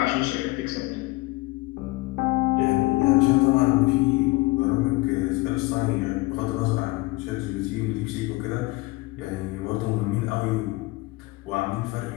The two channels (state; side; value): quieter; right; 21.3 dB